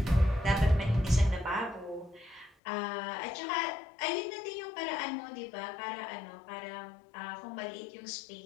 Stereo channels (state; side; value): drops out; right; at 2.6 s